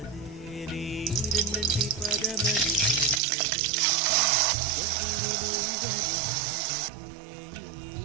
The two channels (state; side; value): drops out; left; at 3.2 s